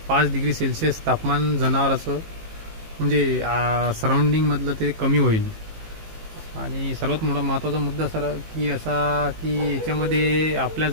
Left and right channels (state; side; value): late; left; 18 ms